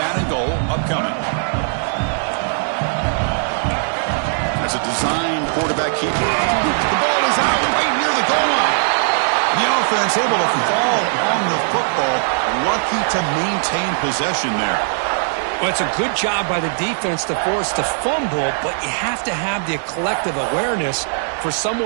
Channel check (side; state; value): left; silent; 66 dB below the other